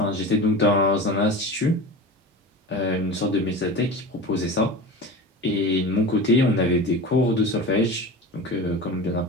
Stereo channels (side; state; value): both; normal; correlation 0.31